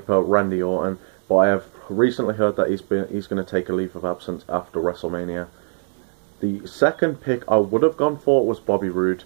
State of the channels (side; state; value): left; silent; digital silence